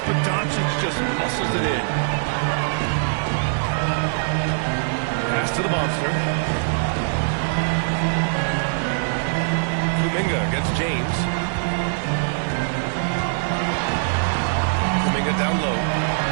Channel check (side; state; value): left; silent; digital silence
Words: but Doncic just muscles it in. Pass to the monster. Kuminga against James. Kuminga down low.